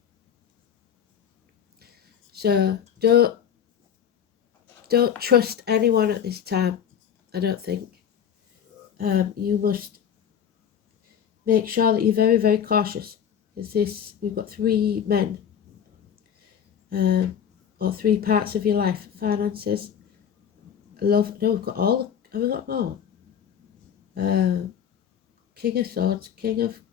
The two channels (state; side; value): quieter; right; 8.5 dB